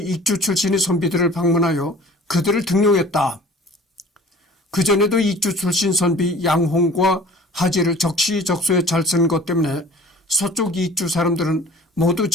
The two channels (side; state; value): both; normal; correlation 0.47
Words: 출신의 선비들을 방문하여 그들을 등용했다. 그전에도 익주 출신 선비 양홍과 하지를 적시적소에 잘 쓴 것 때문에 서쪽 익주 사람들은 모두